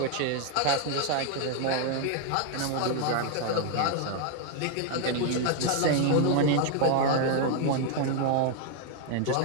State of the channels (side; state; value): both; different; correlation 0.00